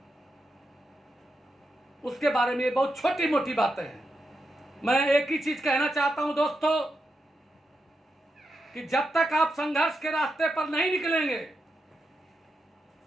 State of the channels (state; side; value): normal; both; correlation 0.86